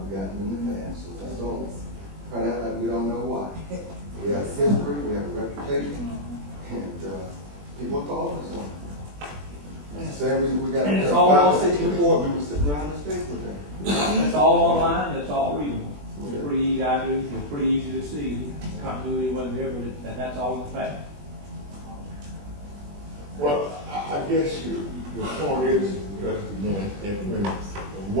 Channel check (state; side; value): late; left; 21 ms